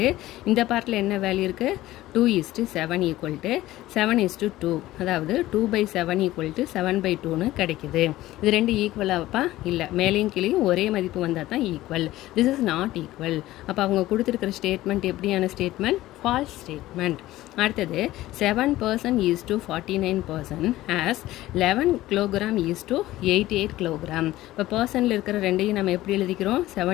இந்த பார்ட்டில் என்ன வேல்யூ இருக்குது 2:7 ஈக்குவல் டு 7:2 அதாவது 2/7 ஈக்குவல் டு 7/2ன்னு கிடைக்குது. இது ரெண்டு ஈக்குவலாகப்பா இல்லை மேலேயும் கீழேயும் ஒரே மதிப்பு வந்தால் தான் equal. This is not equal. அப்போ அவங்க கொடுத்துருக்கிற ஸ்டேட்மெண்ட் எப்படியான ஸ்டேட்மெண்ட் ஃபால்ஸ் ஸ்டேட்மெண்ட். அடுத்தது 7% is to 49% as 11 kilogram is to 88 kilogram. இப்போ பர்சனில் இருக்கிற ரெண்டையும் நம்ம எப்படி எழுதிக்கிறோம்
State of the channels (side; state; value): right; quieter; 16.1 dB